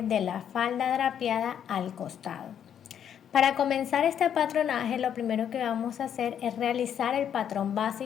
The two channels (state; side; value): quieter; right; 9.0 dB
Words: de la falda drapeada al costado. Para comenzar este patronaje lo primero que vamos a hacer es realizar el patrón